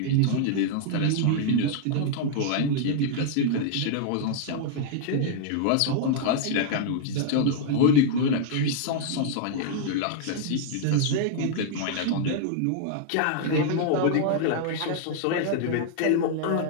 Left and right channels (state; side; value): different; both; correlation -0.01